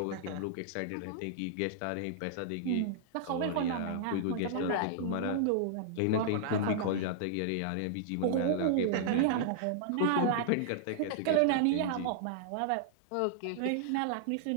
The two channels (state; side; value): different; both; correlation -0.01